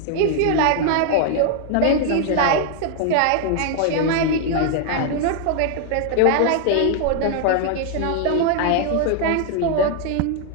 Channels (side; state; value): both; different; correlation 0.00